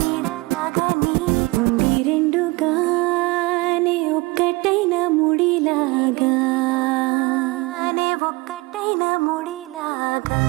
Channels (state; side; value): quieter; left; 24.0 dB